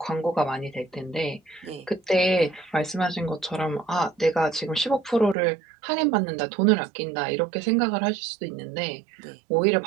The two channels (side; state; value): left; drops out; at 5.4 s